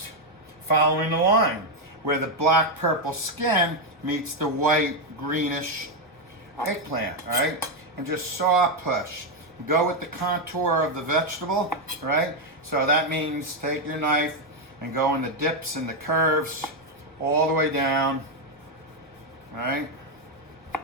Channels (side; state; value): both; normal; correlation 0.03